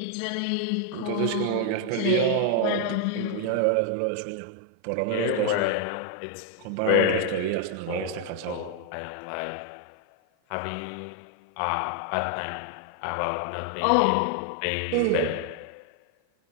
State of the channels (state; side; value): different; both; correlation 0.00